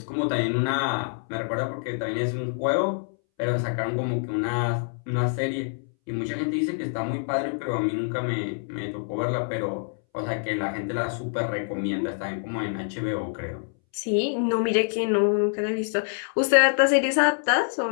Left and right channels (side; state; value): right; silent; 61 dB below the other